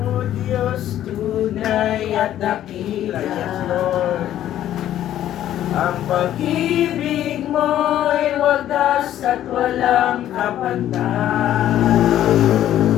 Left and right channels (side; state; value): right; quieter; 12.0 dB